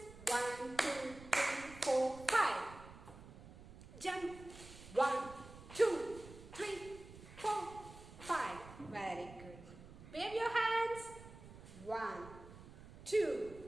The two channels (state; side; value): noise; right; rumble, 17 dB below the sound